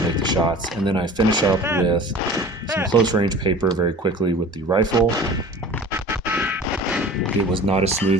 make the shots. And then I finish up with some close range paper very quickly with the rifle. It was not as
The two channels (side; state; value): both; normal; correlation 0.40